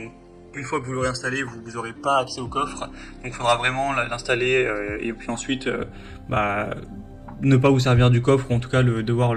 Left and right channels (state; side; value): identical; both; correlation 1.00